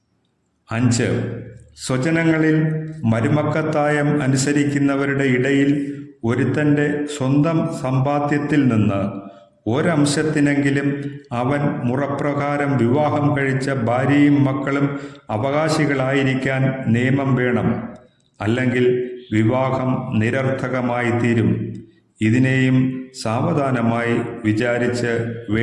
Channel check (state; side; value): identical; both; correlation 1.00